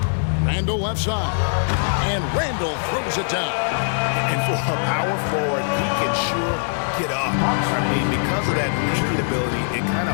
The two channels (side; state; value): right; silent; digital silence